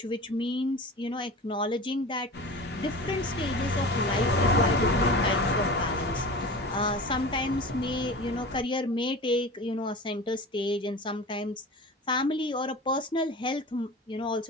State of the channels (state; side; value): normal; both; correlation 0.35